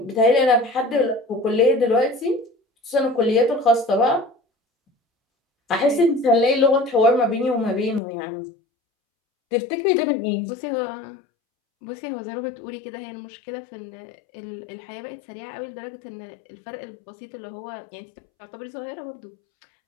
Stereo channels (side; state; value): right; drops out; at 8.0 s